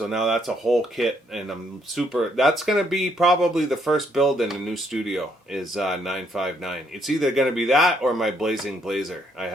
now that's a whole kit, and I'm super. That's gonna be probably the first build in the new studio is 959. It's either gonna be that or my Blazing Blazer. I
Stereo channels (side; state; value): both; normal; correlation 0.71